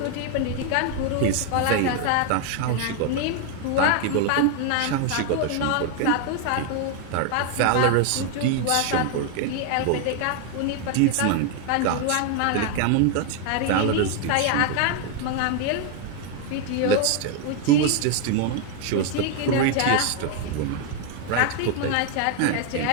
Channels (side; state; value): both; different; correlation 0.01